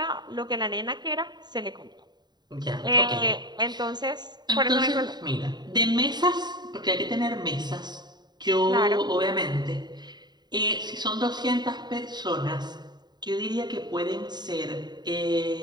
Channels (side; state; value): left; late; 0.20 ms